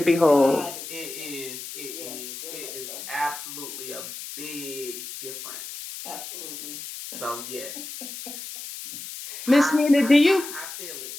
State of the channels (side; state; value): left; noise; hiss, 10 dB below the sound